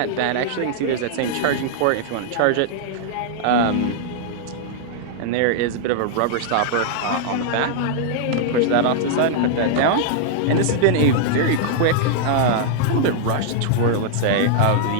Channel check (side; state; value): both; different; correlation -0.01